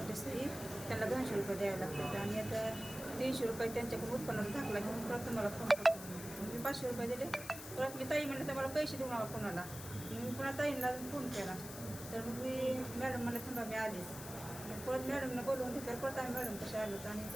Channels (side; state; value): left; noise; hiss, 11 dB below the sound